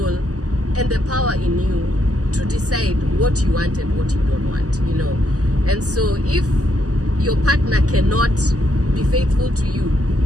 and the power in you to decide what you want and what you don't want, you know. And so if your partner cannot be faithful to you,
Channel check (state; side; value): late; left; 0.67 ms